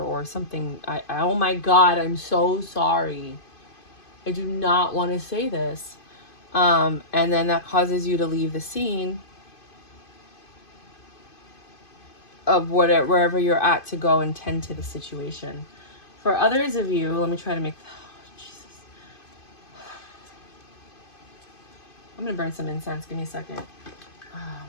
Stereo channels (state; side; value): late; right; 2.5 ms